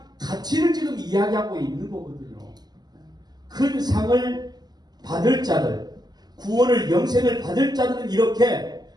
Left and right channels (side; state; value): left; late; 0.20 ms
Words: 가치를 지금 이야기하고 있는 거거든요. 큰 상을 받을 자들, 구원을, 영생을 받을 자들은 이렇게